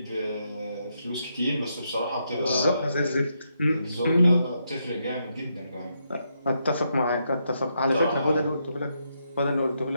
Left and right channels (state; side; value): inverted; both; correlation -0.80